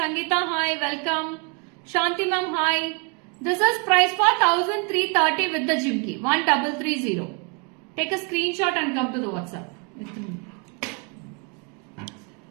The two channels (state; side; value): quieter; left; 34.2 dB